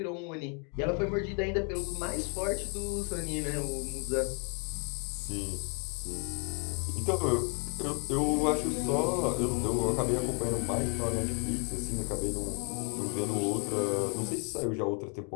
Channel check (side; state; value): right; quieter; 37.9 dB